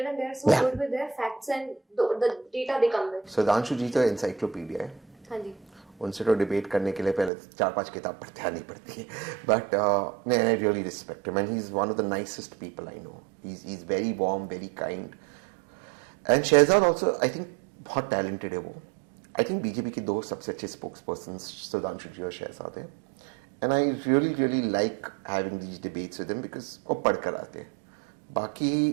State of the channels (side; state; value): left; drops out; at 7.3 s